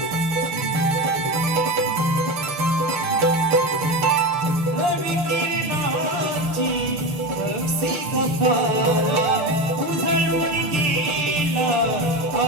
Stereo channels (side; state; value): left; late; 6.8 ms